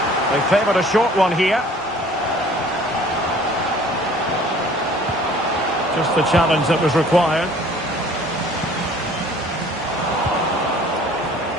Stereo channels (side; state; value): both; normal; correlation 0.52